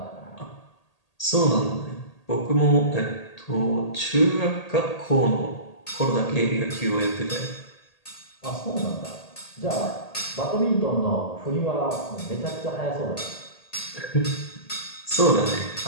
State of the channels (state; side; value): late; right; 1.8 ms